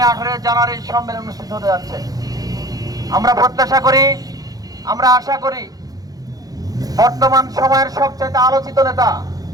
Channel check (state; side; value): late; left; 0.18 ms